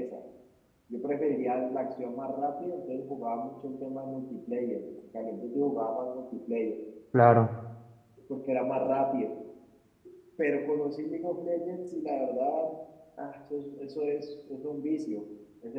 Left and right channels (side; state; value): both; identical; correlation 1.00